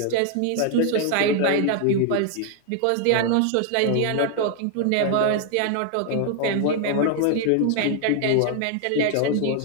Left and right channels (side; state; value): both; different; correlation 0.00